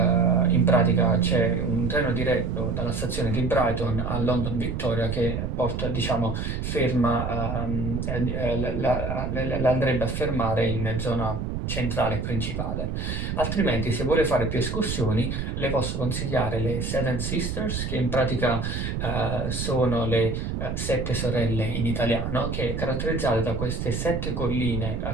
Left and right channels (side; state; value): right; noise; rumble, 3 dB below the sound